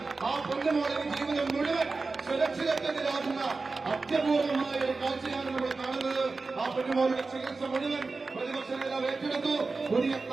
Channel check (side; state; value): left; quieter; 3.9 dB